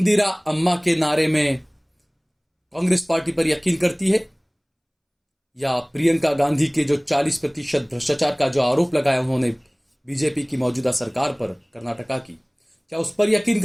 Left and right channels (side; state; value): both; identical; correlation 1.00